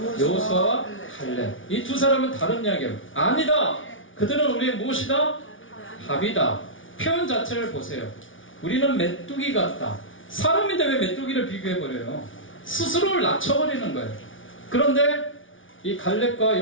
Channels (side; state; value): right; late; 0.57 ms